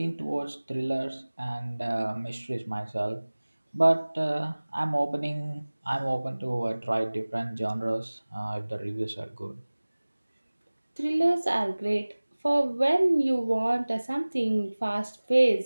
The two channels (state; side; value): inverted; both; correlation -1.00